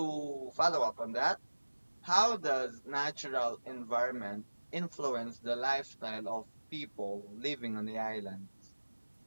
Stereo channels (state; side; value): inverted; both; correlation -1.00